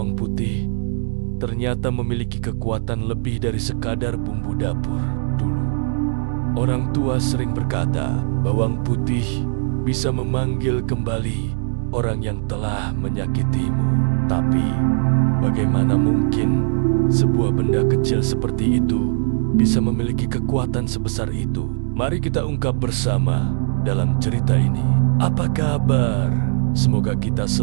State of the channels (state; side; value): silent; left; digital silence